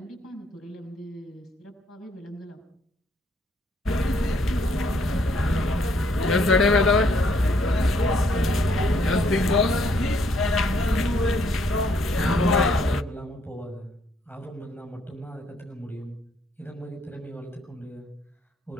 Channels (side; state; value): both; normal; correlation 0.68